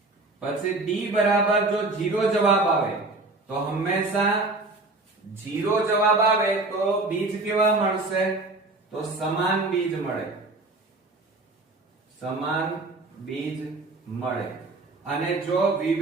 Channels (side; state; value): left; quieter; 3.2 dB